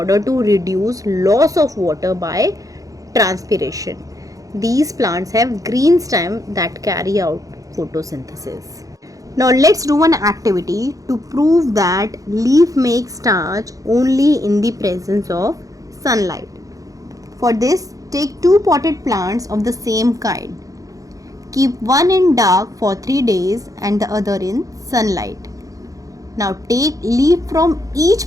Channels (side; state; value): left; late; 0.17 ms